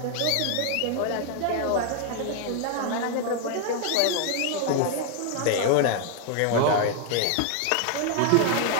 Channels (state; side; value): different; both; correlation 0.00